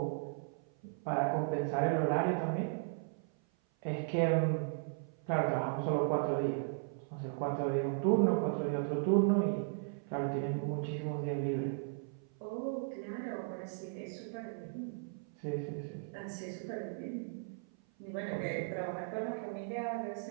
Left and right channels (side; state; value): left; silent; 53 dB below the other